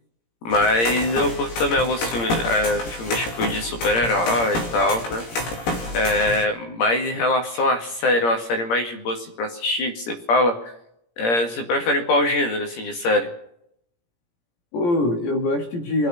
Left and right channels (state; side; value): late; right; 17 ms